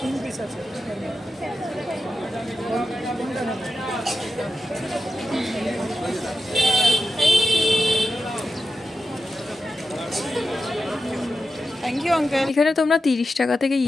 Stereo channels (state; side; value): normal; both; correlation 0.90